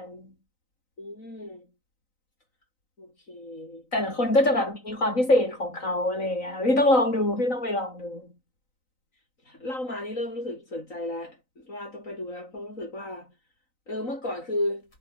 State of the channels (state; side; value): late; right; 3.9 ms